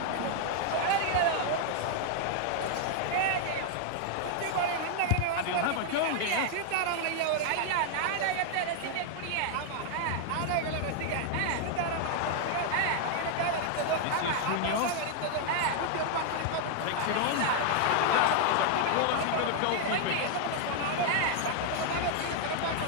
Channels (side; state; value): both; different; correlation 0.00